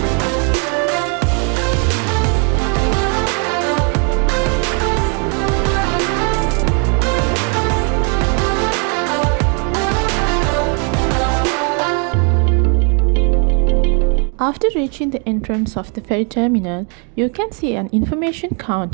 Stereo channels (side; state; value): left; quieter; 38.3 dB